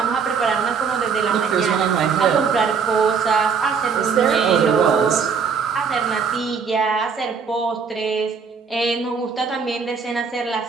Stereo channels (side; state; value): left; quieter; 5.9 dB